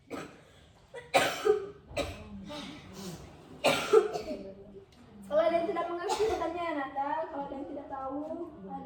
Kalau ada yang tidak mengerti bertanya ya Nanda. Kalau ada yang tidak tahu, ada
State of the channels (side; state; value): both; identical; correlation 1.00